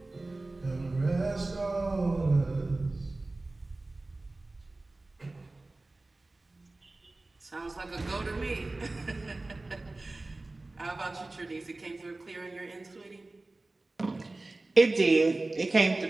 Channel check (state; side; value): quieter; left; 3.0 dB